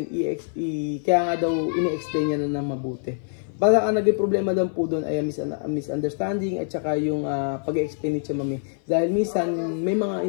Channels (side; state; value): right; silent; 58 dB below the other